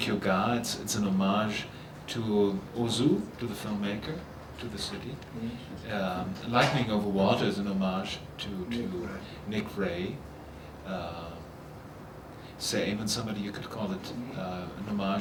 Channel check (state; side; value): identical; both; correlation 1.00